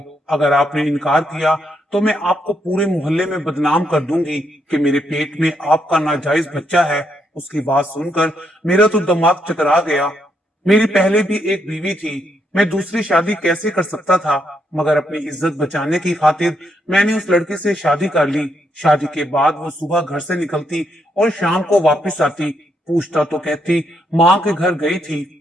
अगर आपने इनकार किया तो मैं आपको पूरे मोहल्ले में बदनाम कर दूंगी कि मेरे पेट में आपका नाजायज बच्चा है। उसकी बात सुनकर मेरा तो दिमाग चकरा गया। मेरी पहले भी एक बीवी थी, मैं दूसरी शादी कैसे कर सकता था, मगर अपनी इज्जत बचाने की खातिर मैंने उस लड़की से शादी कर ली। शादी के बाद वो सुबह घर से निकलती और शाम को वापस आती। पूछता तो कहती माँ के घर गई थी।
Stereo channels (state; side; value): normal; both; correlation 0.77